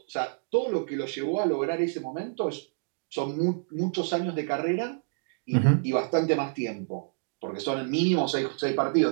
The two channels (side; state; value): left; silent; digital silence